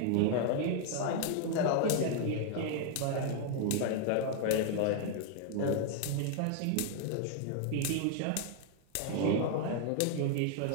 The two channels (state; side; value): different; both; correlation 0.00